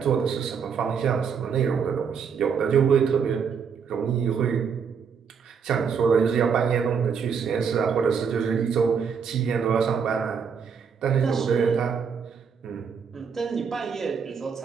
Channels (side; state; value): left; quieter; 6.5 dB